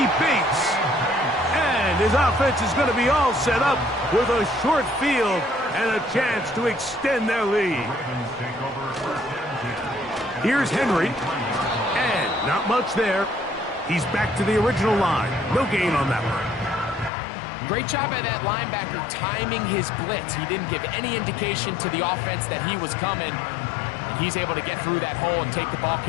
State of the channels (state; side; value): drops out; right; at 17.1 s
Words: Bates. And his offense is going to be all set up with a short field and a chance to extend their lead. Here's Henry. And not much there. He's back to the original line. No gain on that one. Great job by that linebacker timing his blitz. He didn't give any indication to the offense that he was coming. And he's able to get through that hole and take the ball